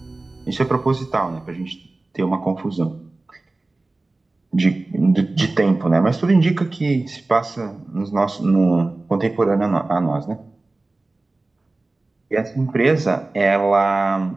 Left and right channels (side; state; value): left; quieter; 3.1 dB